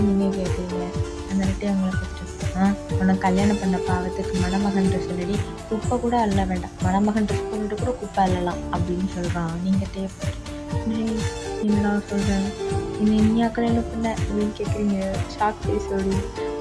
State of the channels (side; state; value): both; identical; correlation 1.00